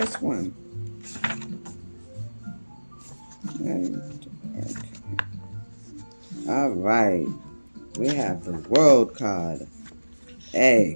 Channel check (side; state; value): both; inverted; correlation -1.00